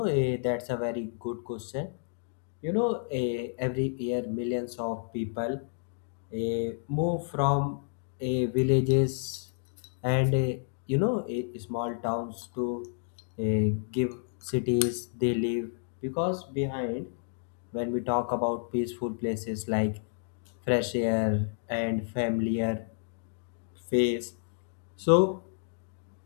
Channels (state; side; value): silent; right; digital silence